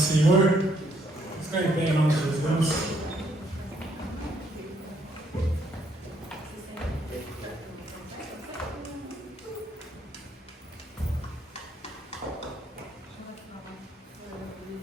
Senhor. Vamos ficar em pé em nome de Jesus.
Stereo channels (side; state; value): both; normal; correlation 0.70